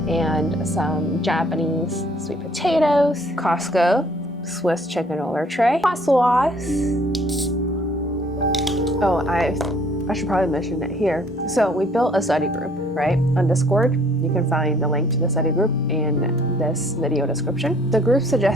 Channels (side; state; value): both; normal; correlation 0.59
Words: and some Japanese sweet potatoes. Costco Swiss chicken roller tray. Hot sauce. Oh, I should probably mention it here. So we built a study group, right? On Discord. You can find the link to the study group in this video description. The group